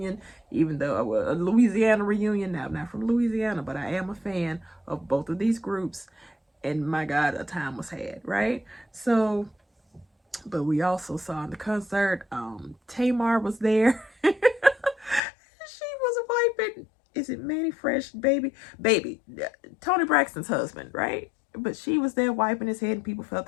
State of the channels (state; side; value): drops out; right; at 15.2 s